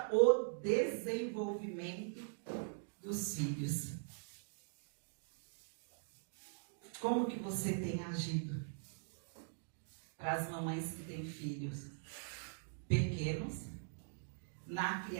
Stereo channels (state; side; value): silent; left; digital silence